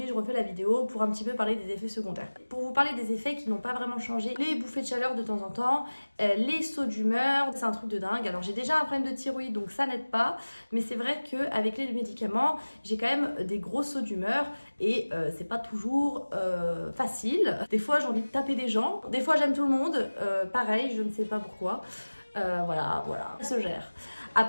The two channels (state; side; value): inverted; both; correlation -1.00